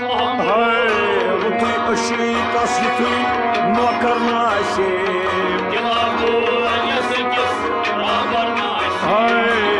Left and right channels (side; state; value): both; identical; correlation 1.00